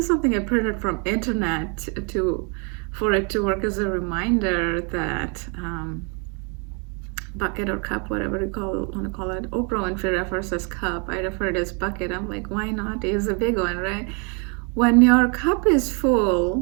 something I printed from internet for it to work as a reminder that bucket or cup, whatever you want to call it. Oprah Winfrey refers as cup. I refer it as bucket. I'm like, why not use a big one, right? When your cup is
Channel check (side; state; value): left; quieter; 35.7 dB